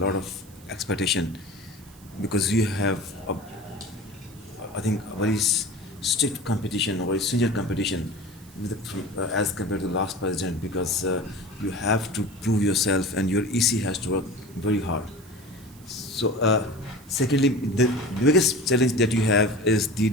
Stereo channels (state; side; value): noise; right; hiss, 24 dB below the sound